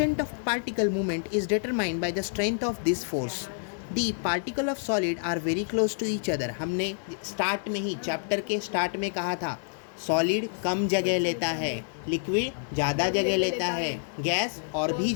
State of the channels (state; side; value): silent; right; digital silence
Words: of particle movement is determined by the strength of this force. The particle of solid are very close to each other. हमने स्टार्ट में ही, चैप्टर के स्टार्ट में कहा था सॉलिड कम जगह लेता है, लिक्विड ज़्यादा जगह लेता है, गैस और भी